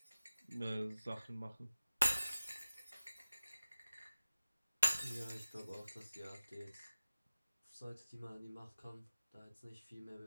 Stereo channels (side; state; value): both; inverted; correlation -0.96